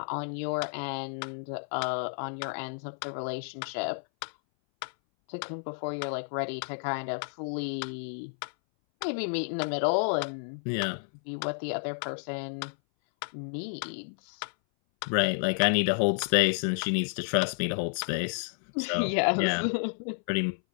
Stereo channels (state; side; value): silent; right; 57 dB below the other